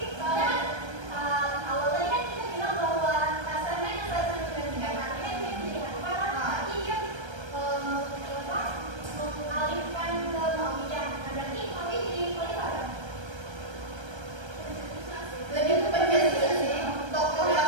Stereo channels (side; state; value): left; late; 1.3 ms